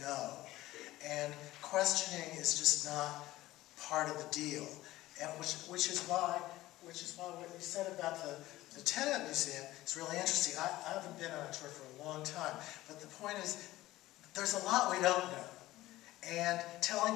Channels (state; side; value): quieter; right; 16.7 dB